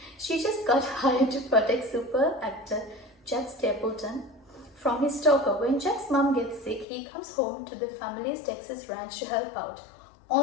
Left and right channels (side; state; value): right; drops out; at 6.9 s